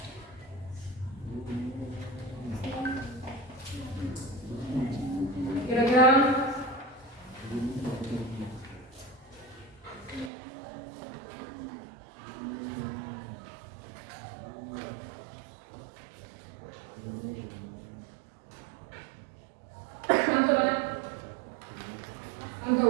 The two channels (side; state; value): left; drops out; at 10.3 s